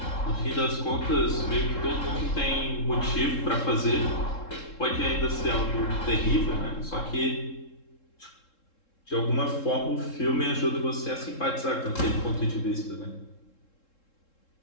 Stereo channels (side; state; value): right; late; 3.7 ms